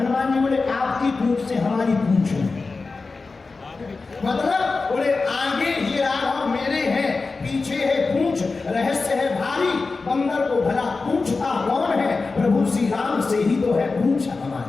जी बोले आपकी पूंछ से हमारी पूंछ है। मतलब बोले आगे ये राघव मेरे हैं, पीछे है पूंछ, रहस्य है भारी, बंदर को भला पूंछता कौन है? प्रभु श्री राम से ही तो है पूंछ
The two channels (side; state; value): right; quieter; 4.0 dB